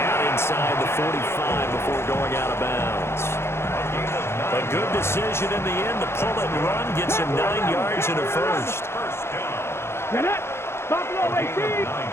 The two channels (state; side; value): late; right; 0.12 ms